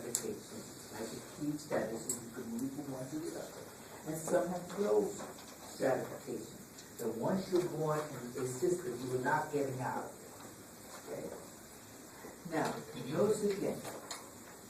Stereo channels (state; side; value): identical; both; correlation 1.00